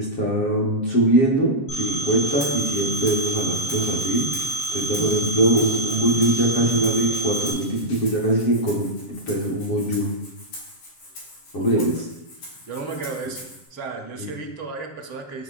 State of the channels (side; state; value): right; late; 7.4 ms